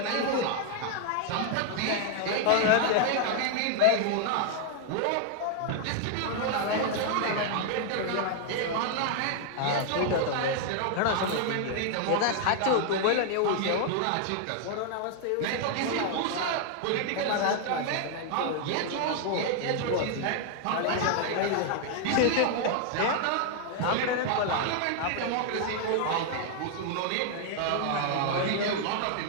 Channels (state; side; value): different; both; correlation 0.00